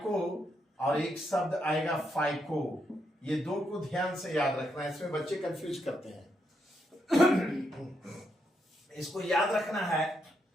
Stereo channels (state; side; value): normal; both; correlation 0.79